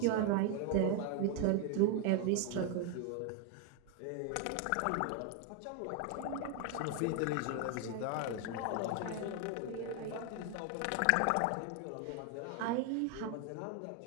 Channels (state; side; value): different; both; correlation 0.01